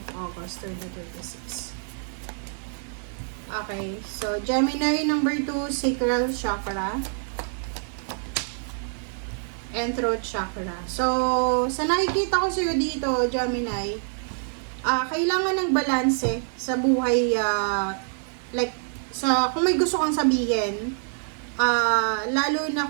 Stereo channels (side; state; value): left; silent; 61 dB below the other